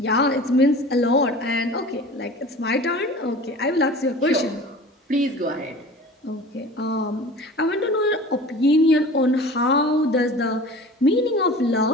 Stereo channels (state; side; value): normal; both; correlation 0.40